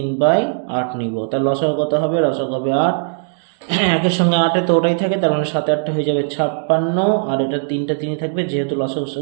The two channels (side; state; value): left; silent; digital silence